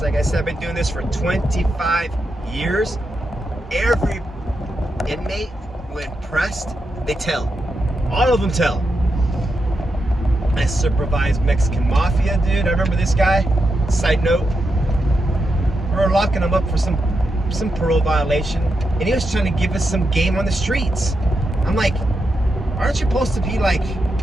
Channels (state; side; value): normal; both; correlation 0.86